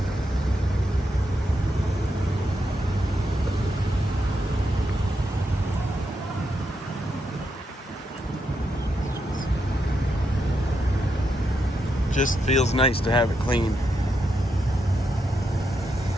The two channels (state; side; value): normal; both; correlation 0.82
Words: Just feels nice to have it clean.